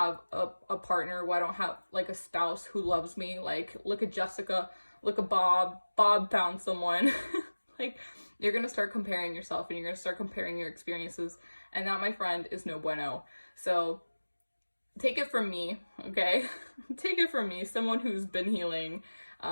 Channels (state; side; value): inverted; both; correlation -1.00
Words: a partner? Why don't I have like a spouse who loves me? Like, look at Jessica, look at Bob. Bob found someone. Like, you're going to start comparing yourself, and you're going to start comparing your experiences. And that, my friend, is no bueno. So take it from me, okay? Take it from me, someone who's been healing.